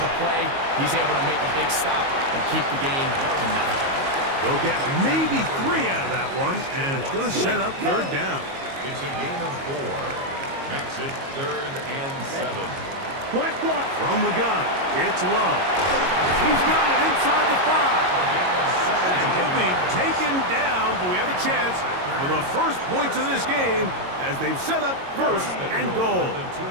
play. He's able to make a big stop and keep the game to nothing. They'll get maybe 3 out of that one, and it's going to set up third down. It's a gain of 4. Makes it third and 7. From the gun, it's Love. He's got it inside the 5. And he'll be taken down, but we have a chance for the first points of this game as they've set up first and goal. The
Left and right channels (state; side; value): late; left; 22 ms